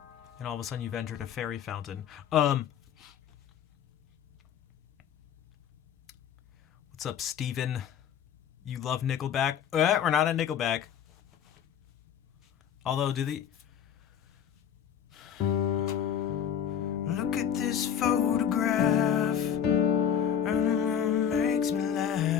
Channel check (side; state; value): right; quieter; 8.8 dB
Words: And all of a sudden you've entered a fairy fountain. What's up, Steven? You love Nickelback? We're not at Nickelback. Although, do the... Look at this photograph. Makes me